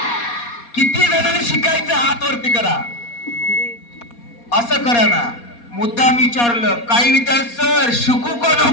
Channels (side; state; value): right; late; 4.2 ms